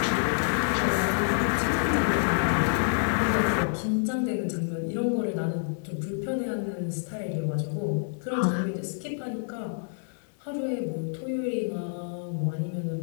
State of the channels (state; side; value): silent; right; 59 dB below the other